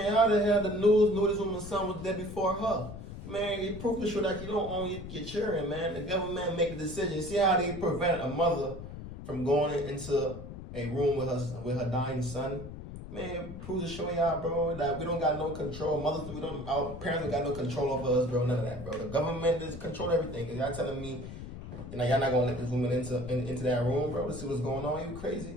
how the hell the news knew this woman's son was dead before her? Man, it proved to show that you don't own your children, man. The government make a decision. See how they prevent a mother from going into a room with her dying son? Man, it proves to show y'all, bro, that we don't got no control. Our parents don't got no control over us, bro. None of that, bro. The government is control everything. Cause y'all telling me, y'all not gonna let this woman into that room, bro, to see what's going on. You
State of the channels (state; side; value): noise; left; rumble, 11 dB below the sound